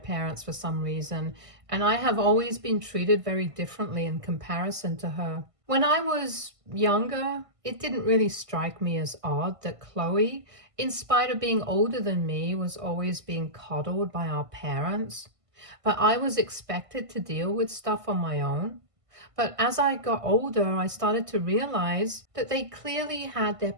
for some reason, and I have always been treated very differently in comparison to her. When I was younger, it didn't really strike me as odd that Chloe, in spite of being older than me, was always being coddled by our parents. But I was expected to deal with stuff on my own. But as I got older, I started to realize that they clearly had their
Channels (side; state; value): left; late; 1.5 ms